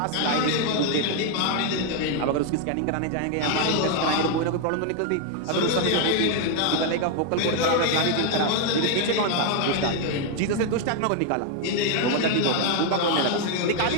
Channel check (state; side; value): different; both; correlation 0.01